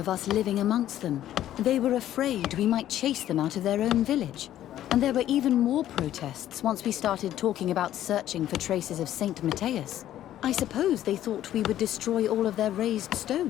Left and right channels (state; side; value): quieter; right; 12.3 dB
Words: us living amongst them. They were afraid we might chase them out of their own village. And there were even more protests once we started talking about searching for traces of Saint Matthias. I suppose they thought we would destroy all of their raised